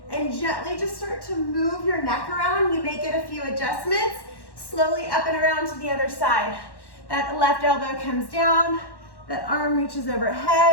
and gently just start to move your neck around, you may get a few adjustments. Slowly up and around to the other side. That left elbow comes down, that arm reaches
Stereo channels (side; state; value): right; late; 1.1 ms